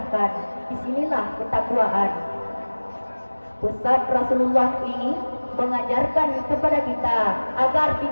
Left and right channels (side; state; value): both; inverted; correlation -1.00